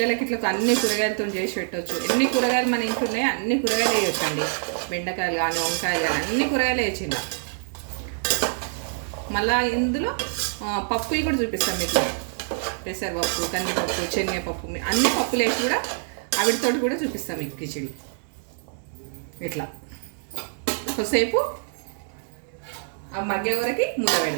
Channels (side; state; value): left; silent; digital silence